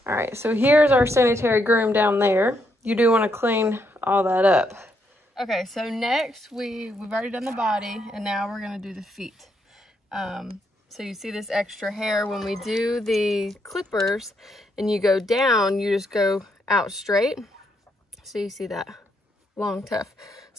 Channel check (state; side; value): normal; both; correlation 0.76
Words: All right, so here's our sanitary groom down there. You do want to clean all that up. Okay, so next we've already done the body, and now we're gonna do the feet. So you see this extra hair when we do the clippers, and you go down, you just go out straight. So you see that long tuft.